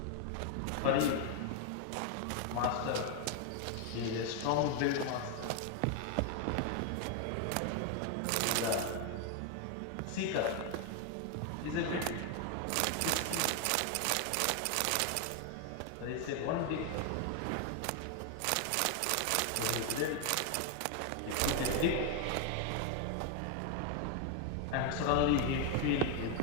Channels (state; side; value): different; both; correlation 0.01